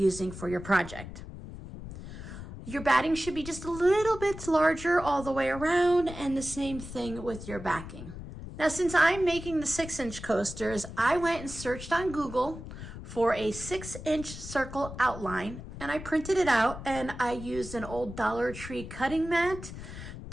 for your project. Your batting should be just a little bit larger all the way around, and the same thing with your backing. Now, since I'm making the 6-inch coasters, I went and searched on Google for a 6-inch circle outline, and I printed it out, and I used an old Dollar Tree cutting mat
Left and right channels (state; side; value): noise; left; rumble, 11 dB below the sound